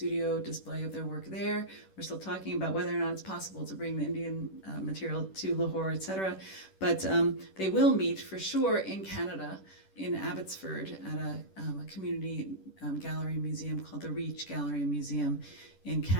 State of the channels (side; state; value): right; late; 10 ms